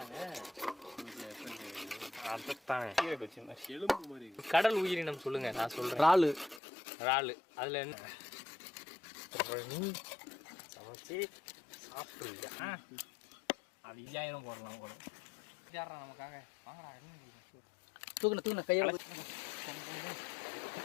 கடல் உயிரினம் சொல்லுங்க. நான் சொல்றேன் இறாலு. அதுல என்ன சமைச்சு சாப்பிடுறியா? அது 5000 போடலாம் கூட. நமக்காக வாங்கடா. தூக்குன கையோட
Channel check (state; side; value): drops out; right; at 6.6 s